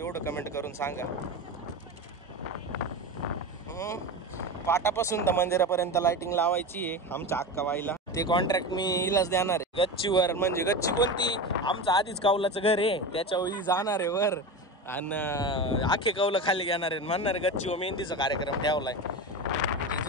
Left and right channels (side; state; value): both; normal; correlation 0.24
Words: कमेंट करून सांगा। पाटापासून तर मंदिरापर्यंत लाइटिंग लावायची आहे आमच्या अक्काबाईला, ते कॉन्ट्रॅक्ट मी हिलाच देणार आहे। गच्चीवर म्हणजे गच्ची कोणती, आमचं आधीच कौलाचं घर आहे त्याच्यावर जाणार आहे वर आणि आखे कौलं खाली घेणार आहे, म्हणणार गच्चीवर मेहंदीचा कार्यक्रम ठेवलाय,